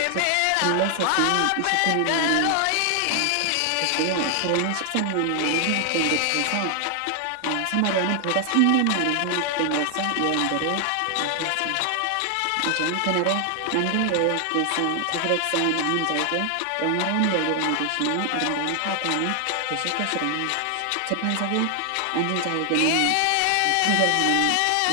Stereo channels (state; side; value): different; both; correlation 0.00